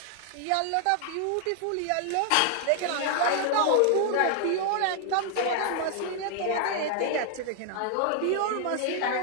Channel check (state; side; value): different; both; correlation 0.00